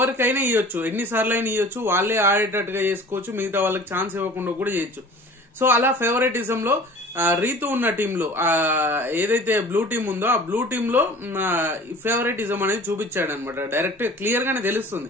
ఇవ్వచ్చు, ఎన్నిసార్లు అయినా ఇవ్వచ్చు, వాళ్ళే ఆడేటట్టుగా చేసుకోవచ్చు, మిగతా వాళ్ళకి ఛాన్స్ ఇవ్వకుండా కూడా చేయొచ్చు. సో అలా ఫేవరెటిజం లో రీతు ఉన్న టీంలో ఏదైతే బ్లూ టీం ఉందో ఆ బ్లూ టీమ్ లో ఫేవరెటిజం అనేది చూపించాడు అనమాట. డైరెక్ట్ క్లియర్ గానే తెలుస్తుంది.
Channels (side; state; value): both; normal; correlation 0.44